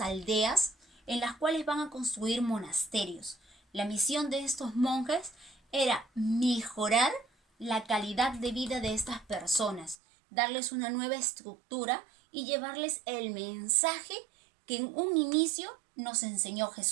en las cuales van a construir monasterios. La misión de estos monjes era mejorar la calidad de vida de estas personas, darles una nueva estructura y llevarles el mensaje que en un inicio nos enseñó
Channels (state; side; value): drops out; left; at 10.0 s